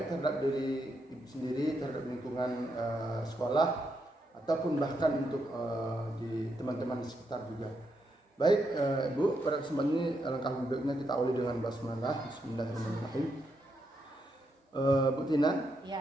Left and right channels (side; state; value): both; normal; correlation 0.81